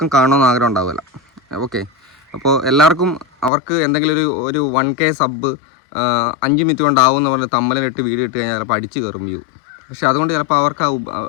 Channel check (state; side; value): drops out; right; at 3.5 s